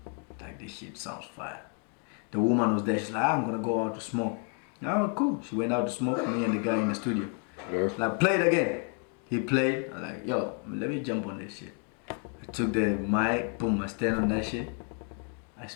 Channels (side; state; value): right; quieter; 39.4 dB